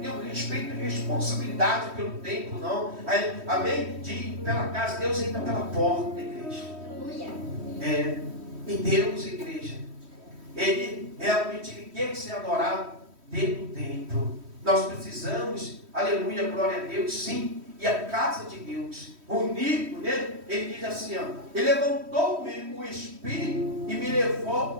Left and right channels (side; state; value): left; late; 3.1 ms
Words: o respeito e responsabilidade pelo templo, não. Amém? De ir pela casa, Deus entra pela porta, igreja. Aleluia. E Deus, igreja, Ele realmente quer ser adorado dentro do templo. Nós precisamos, aleluia, glória a Deus, sim. E a casa de Deus, unido, né? Ele diz assim, ele levantou-me o Espírito e me